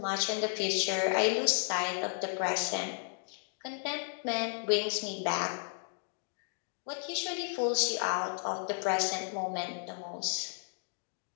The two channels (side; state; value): right; silent; 55 dB below the other